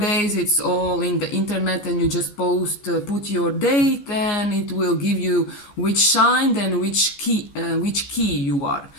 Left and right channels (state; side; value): late; right; 14 ms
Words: it's all in the internet, and you just put your date, and it will give you which sign and which key you are,